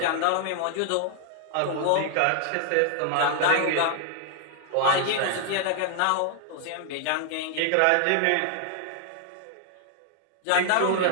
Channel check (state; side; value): different; both; correlation 0.00